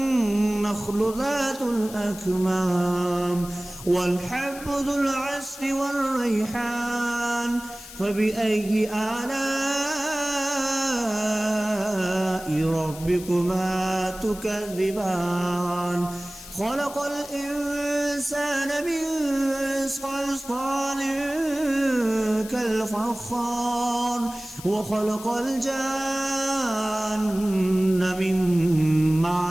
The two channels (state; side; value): noise; left; hiss, 15 dB below the sound